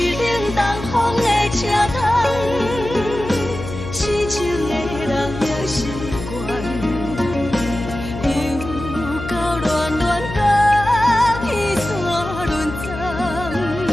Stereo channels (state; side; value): noise; left; hum, 9 dB below the sound